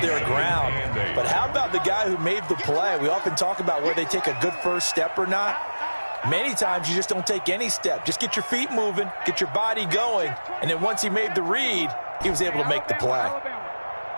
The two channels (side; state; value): both; inverted; correlation -1.00